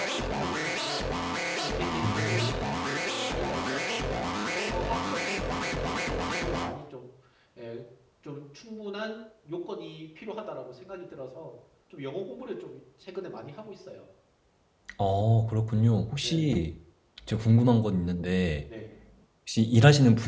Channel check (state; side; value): identical; both; correlation 1.00